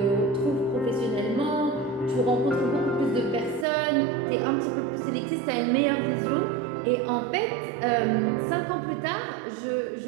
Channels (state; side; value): drops out; left; at 3.7 s